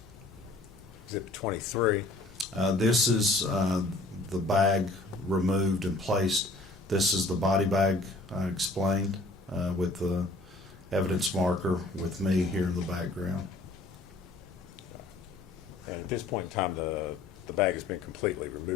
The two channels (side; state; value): right; quieter; 3.0 dB